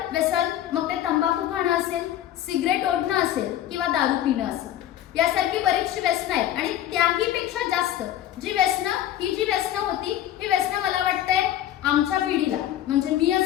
व्यसन मग ते तंबाखू खाणं असेल, सिगरेट ओढणं असेल किंवा दारू पिणं असेल, यासारखी बरीचशी व्यसनं आहेत. आणि त्याही पेक्षा जास्त जी व्यसनं होती ही व्यसनं मला वाटतंय आमच्या पिढीला, म्हणजे मी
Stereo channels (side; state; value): right; quieter; 12.1 dB